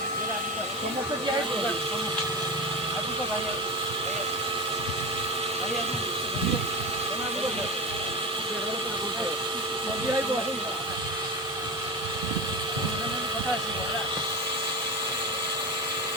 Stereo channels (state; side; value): normal; both; correlation 0.23